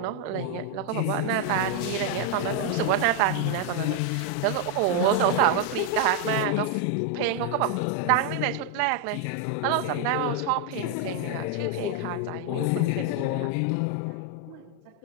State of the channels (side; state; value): both; different; correlation 0.00